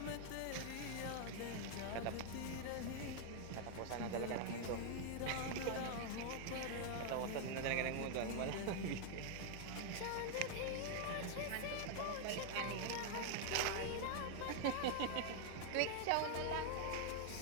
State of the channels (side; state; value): both; different; correlation 0.00